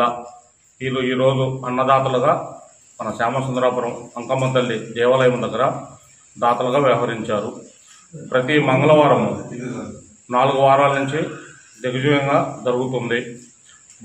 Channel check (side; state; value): both; identical; correlation 1.00